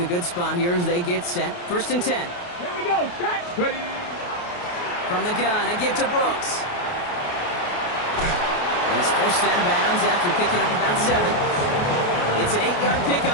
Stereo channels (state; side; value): late; right; 28 ms